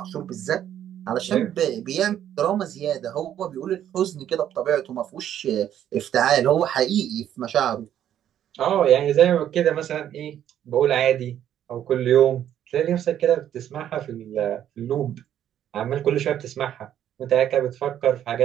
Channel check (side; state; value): left; quieter; 10.6 dB